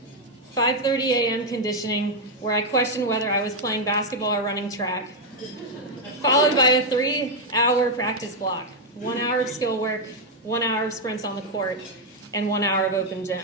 5:30 a.m. conditioning, where I questioned whether I was playing basketball or running track, followed by a 3-hour practice block, 1 hour of skill work, 1 hour of sprints on the court, and 1 hour of open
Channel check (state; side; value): normal; both; correlation 0.01